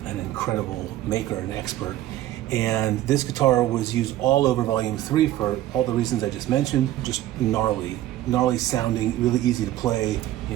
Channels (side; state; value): left; quieter; 14.1 dB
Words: an incredible maker, an expert. And this guitar was used all over Volume 3 for all the reasons I just mentioned. Just gnarly sounding, really easy to play, you